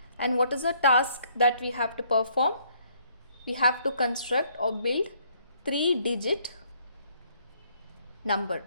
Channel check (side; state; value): both; inverted; correlation -0.66